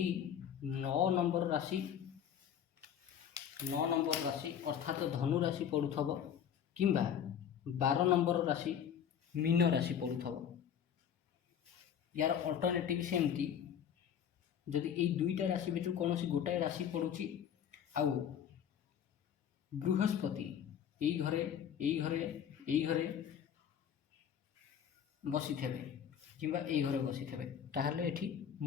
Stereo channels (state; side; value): quieter; right; 8.7 dB